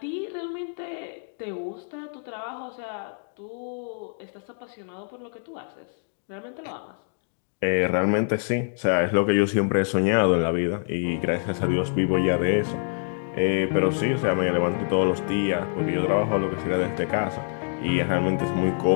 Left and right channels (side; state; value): right; silent; digital silence